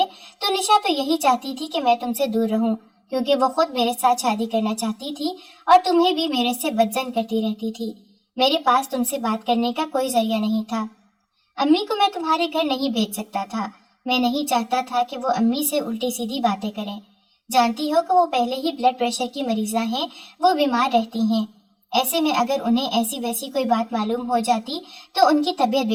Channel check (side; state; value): both; identical; correlation 1.00